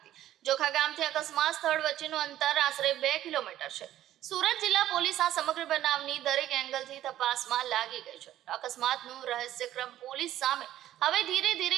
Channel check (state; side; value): quieter; left; 12.9 dB